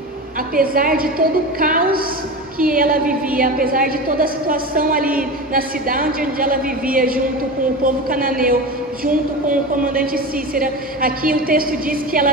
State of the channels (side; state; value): both; normal; correlation 0.26